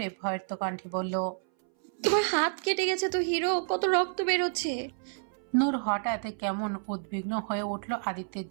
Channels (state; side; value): silent; left; 58 dB below the other